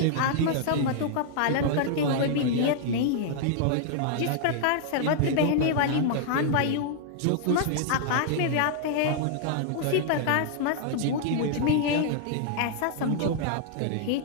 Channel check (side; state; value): both; different; correlation -0.01